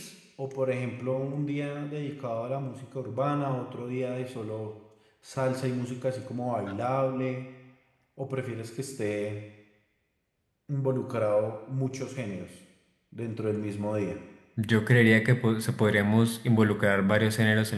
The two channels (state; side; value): identical; both; correlation 1.00